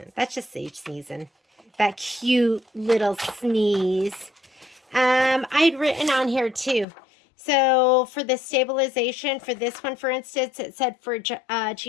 that's just Sage sneezing. That cute little sneeze. I'd written on here too. So for the stabilization, for this one, for instance, it said for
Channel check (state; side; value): drops out; right; at 6.9 s